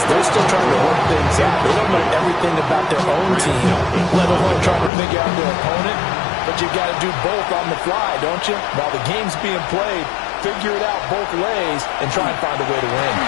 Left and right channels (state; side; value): drops out; right; at 4.9 s